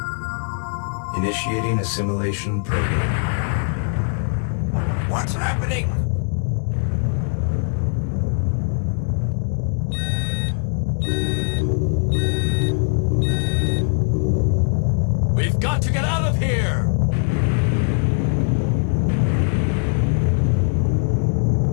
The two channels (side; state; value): right; silent; digital silence